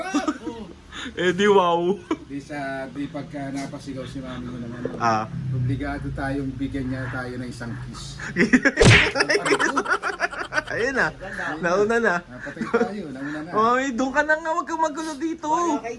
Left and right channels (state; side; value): identical; both; correlation 1.00